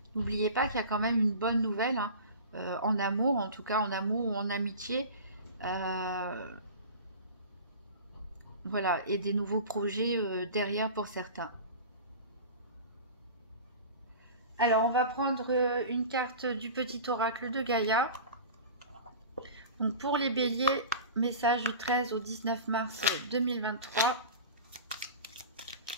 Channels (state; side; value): inverted; both; correlation -0.36